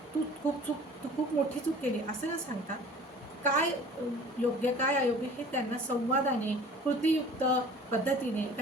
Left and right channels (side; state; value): both; normal; correlation 0.46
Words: तू खूप मोठी चूक केली असं न सांगता काय योग्य काय अयोग्य हे त्यांना संवादाने, कृतीयुक्त पद्धतीने